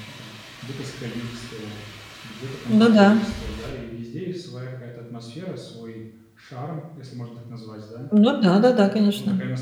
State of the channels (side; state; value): both; identical; correlation 1.00